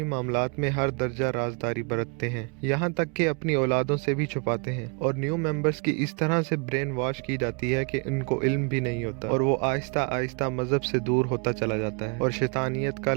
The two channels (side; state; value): left; quieter; 35.6 dB